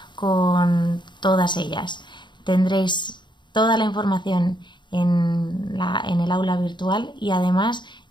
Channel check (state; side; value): late; right; 0.22 ms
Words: con todas ellas. Tendréis toda la información en el aula virtual y además